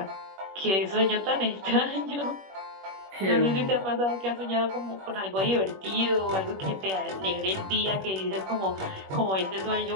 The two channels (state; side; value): late; left; 21 ms